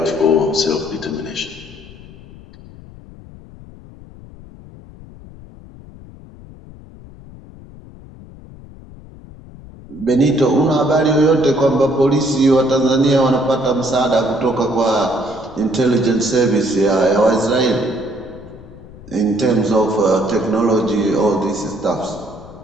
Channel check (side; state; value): left; noise; rumble, 19 dB below the sound